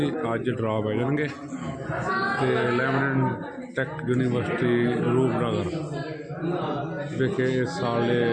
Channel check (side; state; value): both; identical; correlation 1.00